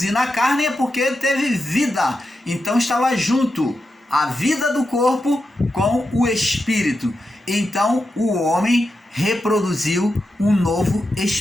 na carne é porque teve vida. Então estava junto a vida do corpo com o espírito. Então o homem reproduziu um novo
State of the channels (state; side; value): normal; both; correlation 0.88